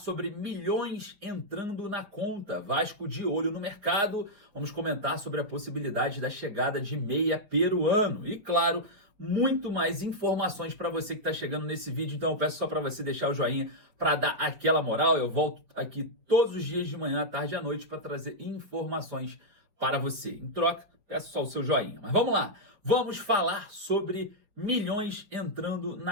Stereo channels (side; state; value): left; late; 5.2 ms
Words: milhões entrando na conta. Vasco de olho no mercado. Vamos comentar sobre a possibilidade da chegada de meia peruano. E, claro, muito mais informações para você que está chegando nesse vídeo. Então eu peço só para você deixar o joinha para dar aquela moral. Eu volto aqui todos os dias de manhã, à tarde e à noite para trazer informações para você. Em troca, peço só o seu joinha. Mas vamos lá. Vamos falar sobre milhões entrando